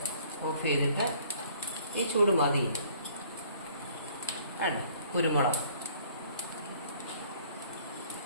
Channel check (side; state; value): both; inverted; correlation -0.57